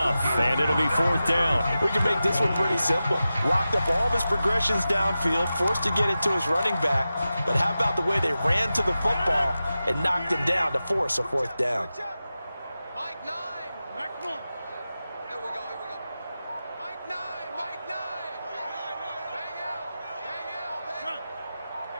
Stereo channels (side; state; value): both; inverted; correlation -0.93